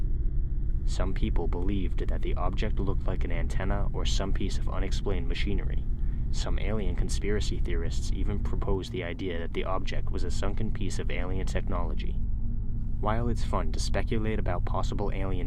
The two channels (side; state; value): both; identical; correlation 1.00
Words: Some people believed that the object looked like an antenna or some piece of unexplained machinery. Some alien conspiracy theorists even proposed the idea that the object was a sunken piece of alien technology. While it's fun to speculate about possible alien